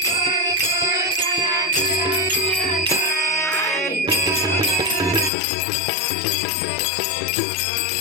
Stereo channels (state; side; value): drops out; right; at 5.3 s